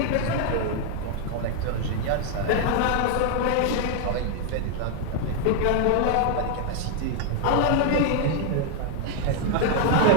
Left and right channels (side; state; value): both; different; correlation 0.00